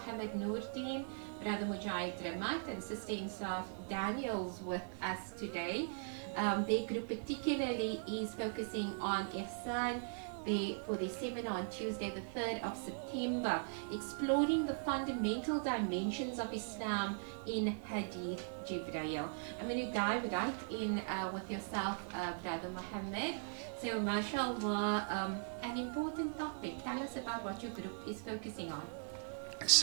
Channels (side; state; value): left; silent; digital silence